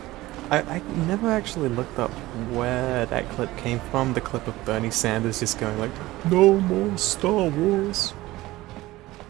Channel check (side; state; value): left; quieter; 18.0 dB